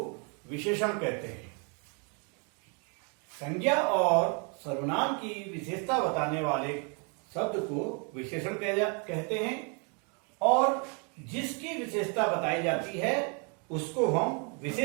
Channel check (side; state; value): left; quieter; 36.1 dB